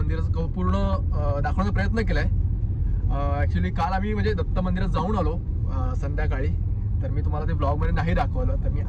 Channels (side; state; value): both; identical; correlation 1.00